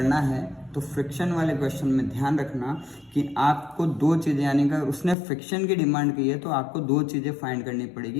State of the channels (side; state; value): right; drops out; at 5.2 s